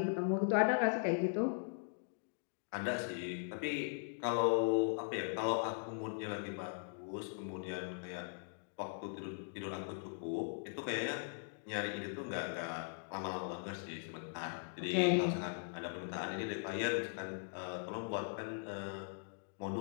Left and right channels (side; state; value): right; silent; digital silence